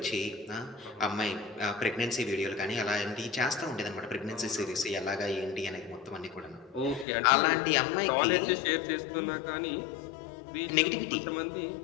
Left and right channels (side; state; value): right; drops out; at 7.1 s